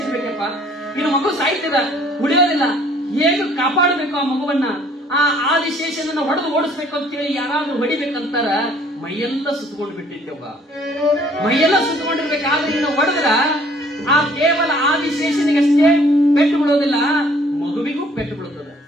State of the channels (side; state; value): both; normal; correlation 0.59